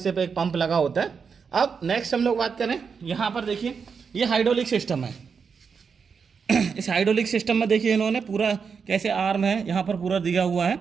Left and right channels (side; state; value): left; quieter; 5.9 dB